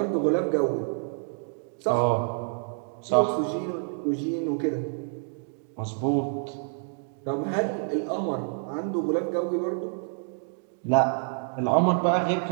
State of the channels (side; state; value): left; silent; 60 dB below the other